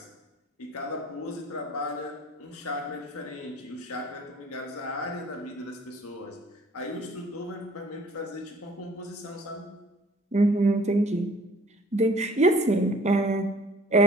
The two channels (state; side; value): normal; both; correlation 0.53